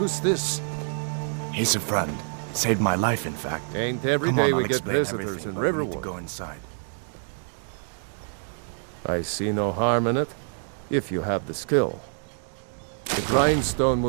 this? He's a friend. Saved my life, in fact. Ain't every Come day on, we I'll get explain visitors everything, in but we need Riverwood. to go inside. I see no harm in it, if you have the skill. The grindstone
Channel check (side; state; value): left; silent; 61 dB below the other